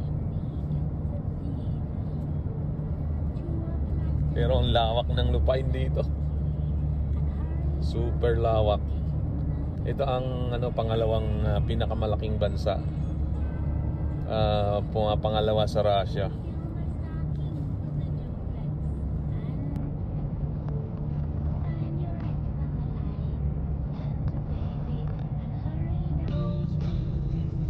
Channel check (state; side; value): identical; both; correlation 1.00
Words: Pero ang lawak ng lupain dito. Super lawak. Ito ang ano, pangalawang pinakamalaking bansa. Pangalawa sa Russia.